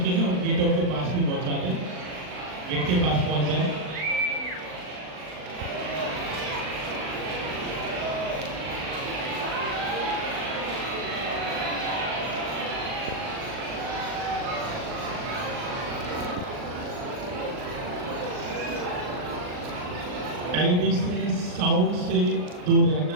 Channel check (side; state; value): left; late; 39 ms